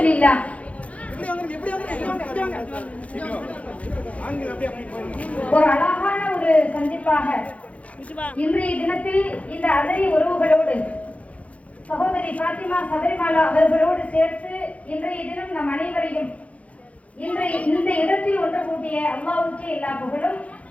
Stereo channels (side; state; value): right; late; 0.065 ms